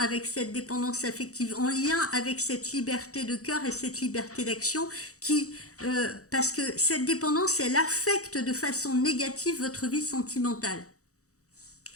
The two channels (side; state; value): right; late; 0.65 ms